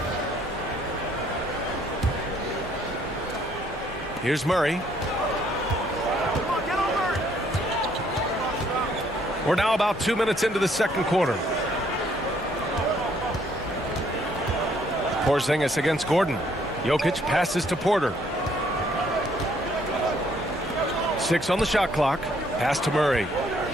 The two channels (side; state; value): both; normal; correlation 0.66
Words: Here's Murray. We're now about 2 minutes into the second quarter. Porzingis against Gordon. Jokic passes to Porter. 6 on the shot clock. Pass to Murray.